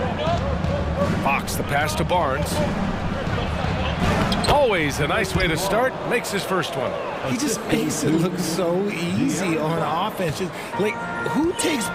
Fox, the pass to Barnes. Always a nice way to start. Makes his first one. He just makes it look so easy on offense. Just, like, who takes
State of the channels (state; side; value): identical; both; correlation 1.00